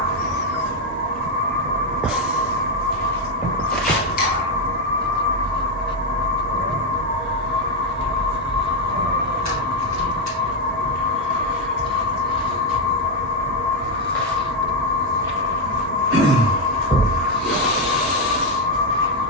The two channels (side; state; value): both; normal; correlation 0.04